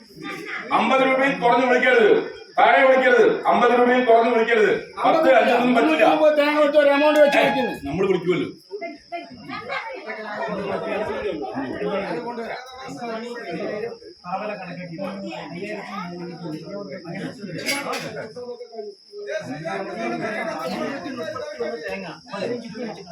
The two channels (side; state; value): both; identical; correlation 1.00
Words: 50 രൂപയിൽ കുറഞ്ഞ് വിളിക്കരുത്, താഴെ വിളിക്കരുത്. 50 രൂപയിൽ കുറഞ്ഞ് വിളിക്കരുത്. 10 5 പറ്റില്ല. നമ്മൾ വിളിക്കുമല്ലോ.